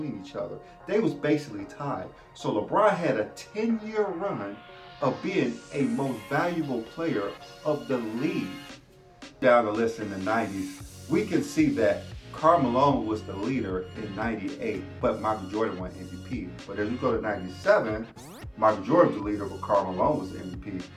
each other. They was basically tied. So LeBron had a 10-year run of being a most valuable player of the league. Down the list in the 90s, we can see that Karl Malone was the leader in 98, but Michael Jordan won MVP. But as we go to 97, Michael Jordan was the leader, but Karl Malone was the MVP.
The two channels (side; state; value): both; identical; correlation 1.00